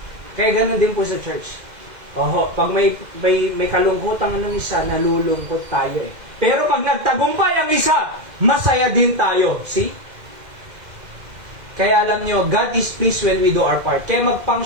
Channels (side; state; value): left; late; 2.1 ms